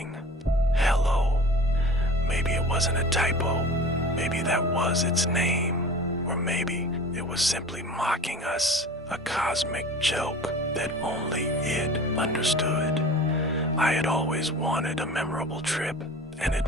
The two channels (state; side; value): normal; both; correlation 0.40